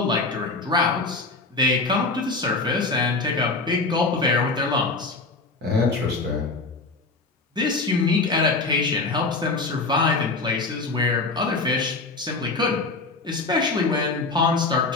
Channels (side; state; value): right; quieter; 3.7 dB